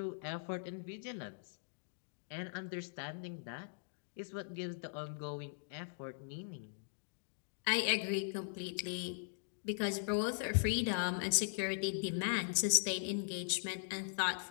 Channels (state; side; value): silent; right; digital silence